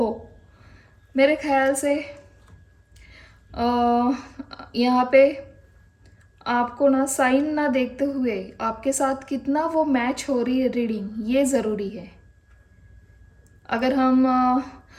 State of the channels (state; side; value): identical; both; correlation 1.00